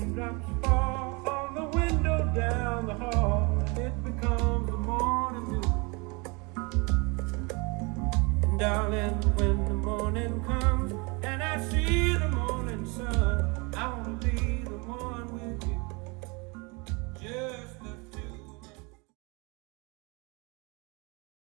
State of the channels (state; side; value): quieter; left; 29.2 dB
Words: fall on the window down the hall, and it becomes the morning dew. And darling, when